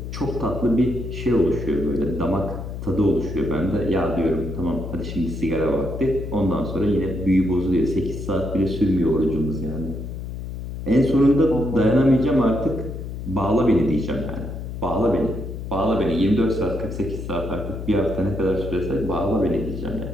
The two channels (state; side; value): noise; left; hum, 7 dB below the sound